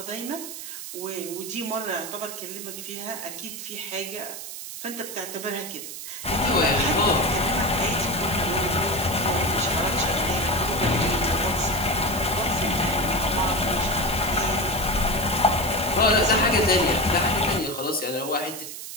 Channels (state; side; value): noise; right; hiss, 9 dB below the sound